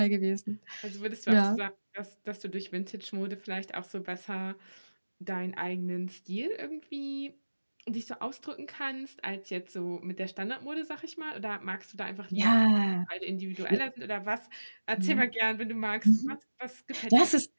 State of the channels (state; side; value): inverted; both; correlation -1.00